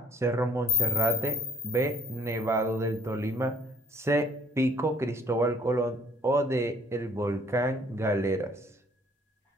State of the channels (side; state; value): both; normal; correlation 0.59